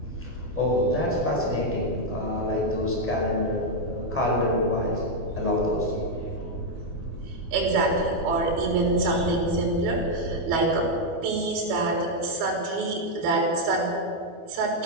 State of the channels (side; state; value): left; late; 12 ms